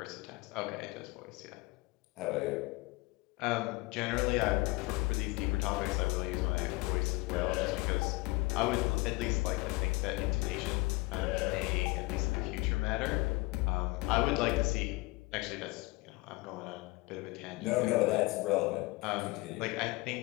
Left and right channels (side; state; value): right; quieter; 23.8 dB